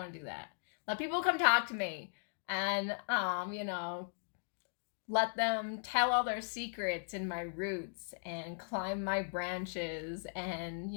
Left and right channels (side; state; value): right; silent; digital silence